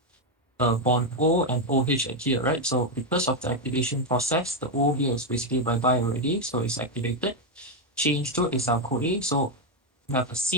bond O and OH at here, right? So because of the activation process, the O here is basically bye-bye already, so it's activated. Change to acyl CoA, so you have a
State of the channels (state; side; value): normal; both; correlation 0.05